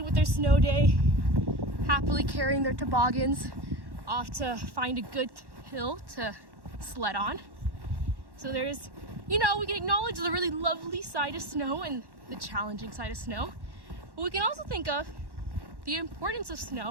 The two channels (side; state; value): left; late; 1.1 ms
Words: with their snow day, happily carrying their toboggans off to find a good hill to sled on. So there's, we can acknowledge the really lovely side of snow and the challenging side of snow, but we can also think of the importance of